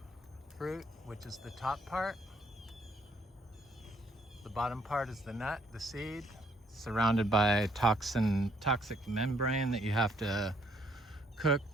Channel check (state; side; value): normal; both; correlation 0.67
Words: fruit, which is the top part. The bottom part is the nut, the seed, surrounded by toxic membrane that you have to cook